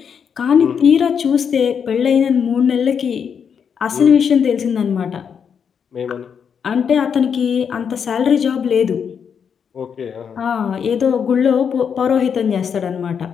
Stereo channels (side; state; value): right; quieter; 7.1 dB